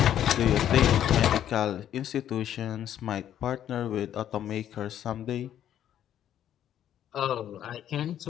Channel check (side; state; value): right; quieter; 10.7 dB